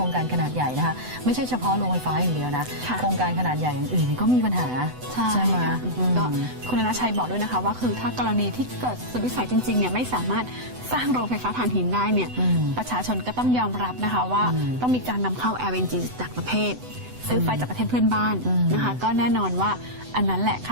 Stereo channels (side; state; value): left; late; 8.0 ms